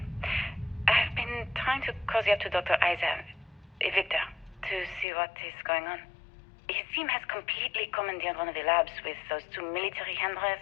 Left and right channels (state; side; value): drops out; right; at 5.1 s